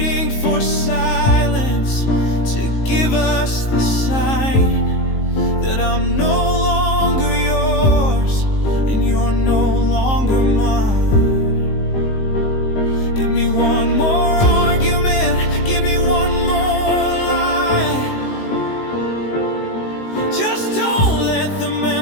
for silence to give us the sign that I'm no longer yours and you're no longer mine. Give me one more argument, give me one more lie. Just don't let the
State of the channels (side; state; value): right; late; 19 ms